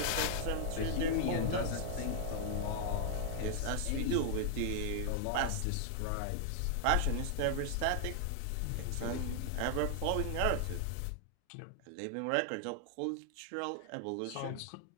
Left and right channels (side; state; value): both; different; correlation -0.01